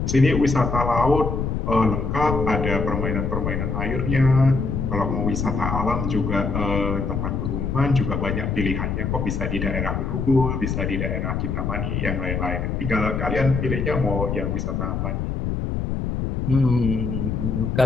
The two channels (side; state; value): left; noise; rumble, 1 dB below the sound